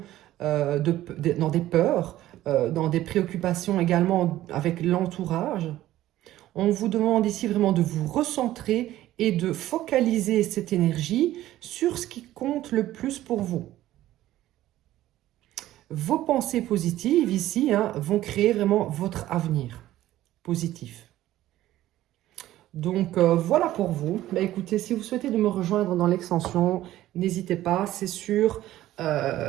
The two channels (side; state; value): left; quieter; 14.4 dB